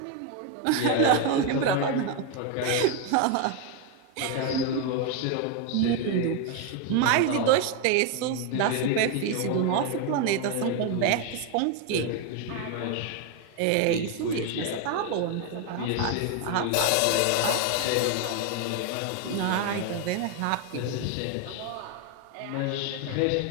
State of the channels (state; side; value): different; both; correlation 0.01